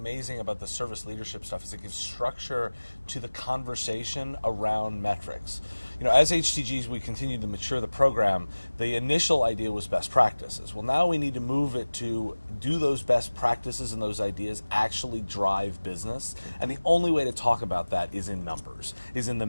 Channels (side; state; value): both; inverted; correlation -1.00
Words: about the service leadership stuff is it gives structure to the conversation around metrics. You know, as HTGs, we continue to mature the program. The initial idea was best practices. Well, now we need to move it to do those best practices and those ideas actually drive business. And the only way to talk about that is in numbers, is in the